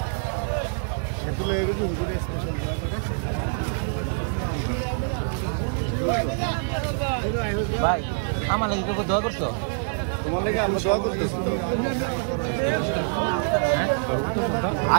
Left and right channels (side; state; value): left; silent; digital silence